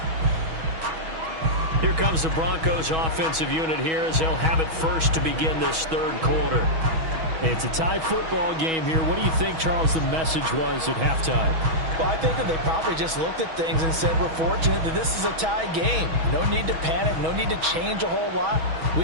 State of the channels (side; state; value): left; late; 6.2 ms